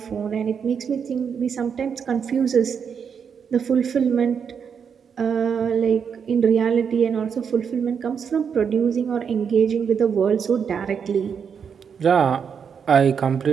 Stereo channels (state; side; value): quieter; left; 6.9 dB